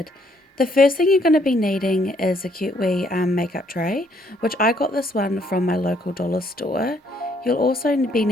The first thing you're going to be needing is a cute wee makeup tray, which I got this one from my local dollar store. You'll also be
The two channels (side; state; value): both; normal; correlation 0.68